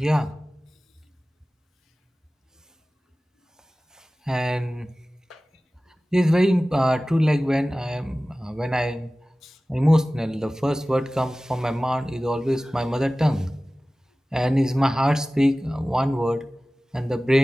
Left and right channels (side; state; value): both; normal; correlation 0.97